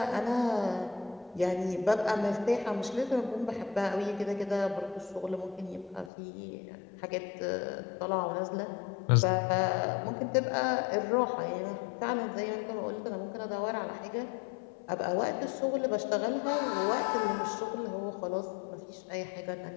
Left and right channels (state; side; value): drops out; right; at 6.1 s